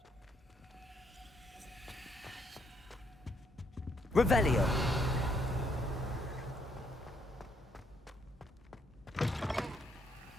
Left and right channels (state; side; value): normal; both; correlation 0.72